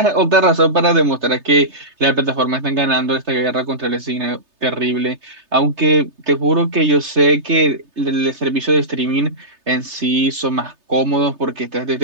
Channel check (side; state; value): left; late; 3.3 ms